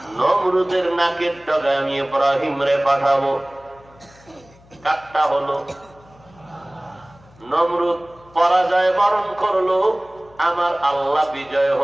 নমরুদের নাকের ডগায় আমি ইব্রাহিম রে পাঠাবো। কাটটা হলো, নমরুদ পরাজয় বরণ করলো, আমার আল্লাহ বিজয়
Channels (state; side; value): noise; left; hum, 27 dB below the sound